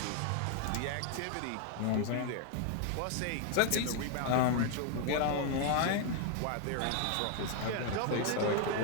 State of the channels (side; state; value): both; different; correlation 0.00